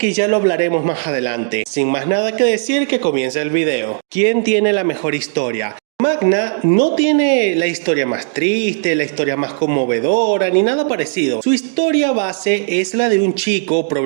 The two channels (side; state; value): left; silent; digital silence